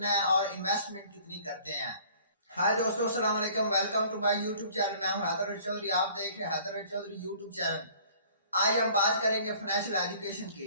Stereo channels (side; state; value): both; inverted; correlation -0.52